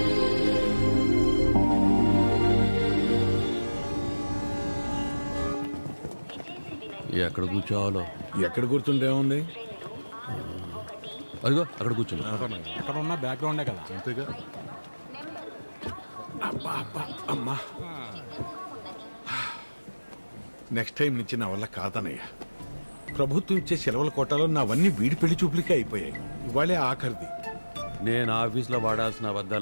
ఎక్కడ కూర్చోవాలో? ఎక్కడ కూర్చుంటేముంది, అదిగో అక్కడ కూర్చుని. అక్కడ ఉన్న బ్యాక్గ్రౌండే కదా. అంతేగా. అబ్బా అబ్బా అమ్మా, నెక్స్ట్ టైం నుంచి నా వల్ల కాదనయ్యా. ప్రభుత్వం ఇచ్చే సెలవుల కోటాలో నావన్నీ వీడి పెళ్లి చూపులకే అయిపోయాయి. ఇవాళే ఆఖరిది. నేను ఆఫీస్లో వాడాల్సిన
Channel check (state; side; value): inverted; both; correlation -1.00